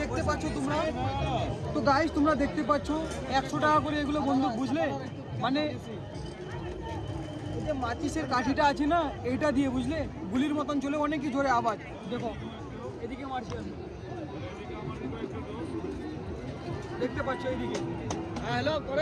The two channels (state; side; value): identical; both; correlation 1.00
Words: পাচ্ছ তোমরা দেখতে পাচ্ছ 100 টাকা করে এগুলো বন্দুক, বুঝলে? মানে এই যে মাচিসের কাঠিটা আছে না, এইটা দিয়ে, বুঝলে, গুলির মতন চলে, অনেকই জোরে আওয়াজ। দেখো এদিকে মারছি আমি, দেখতে পাচ্ছ এইদিকে। হ্যাঁ হ্যালো